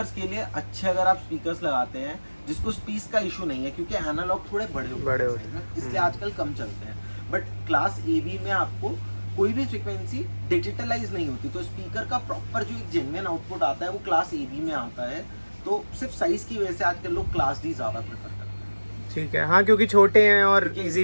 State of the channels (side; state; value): both; inverted; correlation -1.00